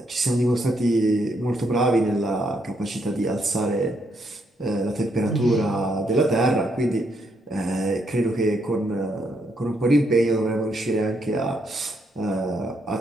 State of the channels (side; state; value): both; normal; correlation 0.76